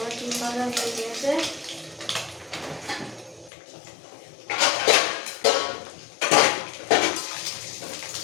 ডিম ভাজা হয়ে গিয়েছে।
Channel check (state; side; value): drops out; right; at 3.5 s